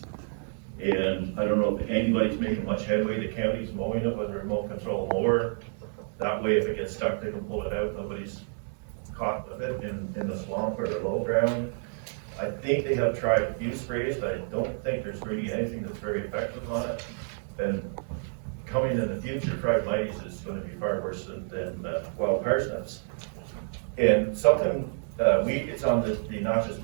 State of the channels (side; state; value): left; silent; 59 dB below the other